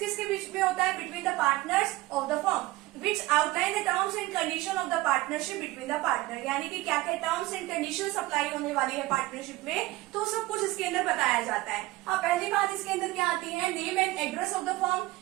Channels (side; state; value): left; quieter; 18.9 dB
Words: के बीच में होता है, between the partners of the firm which outline the terms and condition of the partnership between the partner, यानी कि क्या क्या टर्म्स एंड कंडीशंस अप्लाई होने वाली है पार्टनरशिप में, तो सब कुछ इसके अंदर बताया जाता है। अब पहली बात इसके अंदर क्या आती है, name and address of the firm,